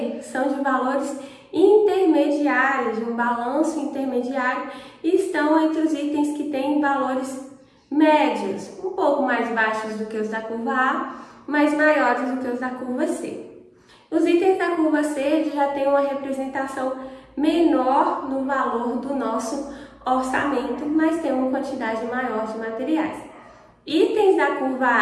são de valores intermediários, de um balanço intermediário, e estão entre os itens que têm valores médios, um pouco mais baixos do que os da curva A, mas maiores do que os da curva C. Os itens da curva C já têm uma representação menor no valor do nosso orçamento, mas tem uma quantidade maior de materiais. Itens da curva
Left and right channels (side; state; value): both; identical; correlation 1.00